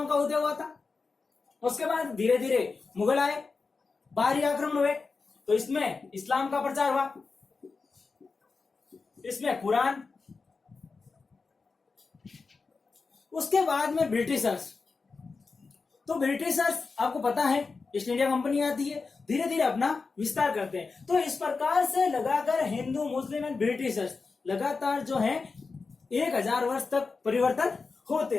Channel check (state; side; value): quieter; right; 4.4 dB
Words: का उदय हुआ था। उसके बाद धीरे धीरे मुगल आए, बाहरी आक्रमण हुए, तो इसमें इस्लाम का प्रचार हुआ, इसमें कुरान। उसके बाद में ब्रिटिशर्स, तो ब्रिटिशर्स आपको पता है ईस्ट इंडिया कंपनी आती है, धीरे धीरे अपना विस्तार करते हैं। तो इस प्रकार से लगाकर हिंदू, मुस्लिम एंड ब्रिटिशर्स लगातार जो है 1000 वर्ष तक परिवर्तन होते